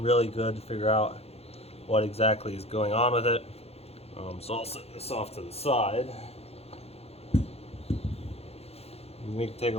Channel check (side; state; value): right; late; 0.29 ms